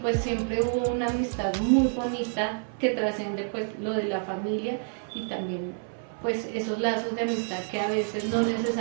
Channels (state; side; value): silent; left; 59 dB below the other